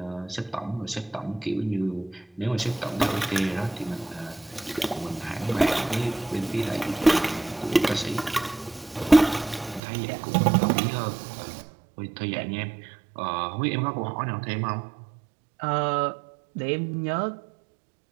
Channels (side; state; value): left; drops out; at 9.8 s